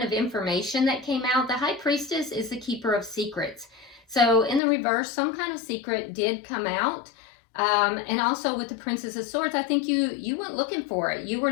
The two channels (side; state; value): right; drops out; at 4.6 s